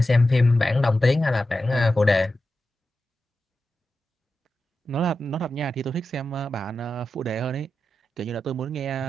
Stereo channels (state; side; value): normal; both; correlation 0.91